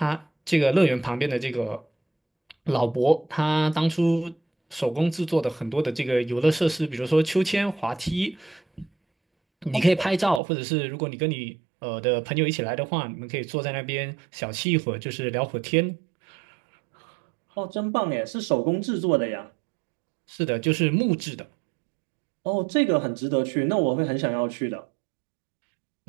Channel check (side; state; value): left; drops out; at 10.4 s